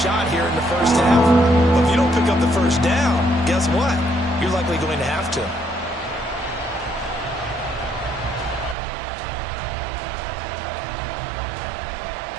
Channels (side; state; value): left; drops out; at 8.8 s